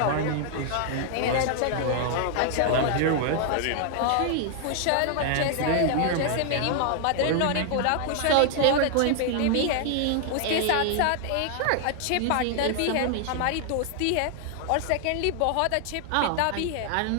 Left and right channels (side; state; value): both; different; correlation 0.00